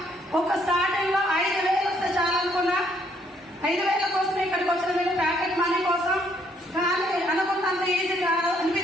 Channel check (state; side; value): normal; both; correlation 0.68